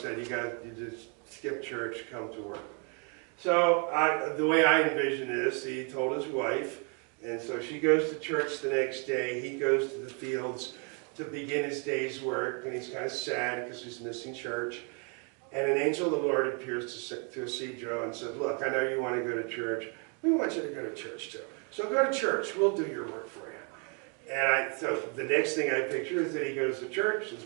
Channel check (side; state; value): left; quieter; 36.8 dB